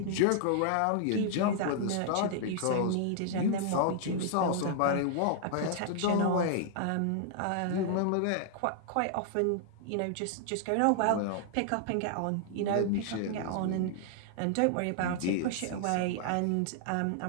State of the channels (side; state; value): both; different; correlation -0.01